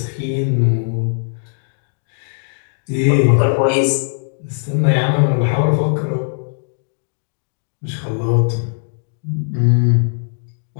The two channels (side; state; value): right; silent; 67 dB below the other